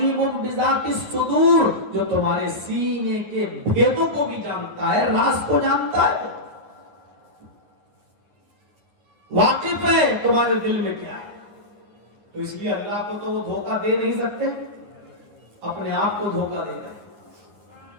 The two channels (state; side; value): late; left; 10 ms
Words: بذات الصدور، جو تمہارے سینے کے بھیدوں کو بھی جانتا ہے، راز کو جانتا ہے، واقف ہے تمہارے دل میں کیا ہے۔ تو اس لیے اللہ کو تو وہ دھوکہ دے نہیں سکتے، اپنے آپ کو دھوکہ دے گا۔